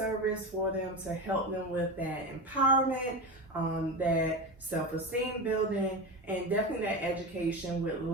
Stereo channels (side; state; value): both; normal; correlation 0.22